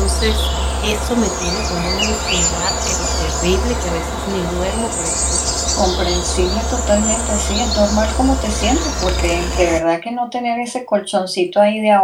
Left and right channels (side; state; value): both; identical; correlation 1.00